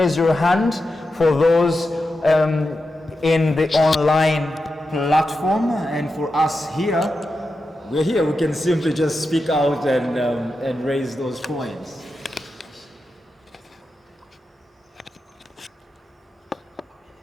your hand for those in the online platform, and for us here, we're here, we can simply just speak out and raise those points.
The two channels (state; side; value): normal; both; correlation 0.89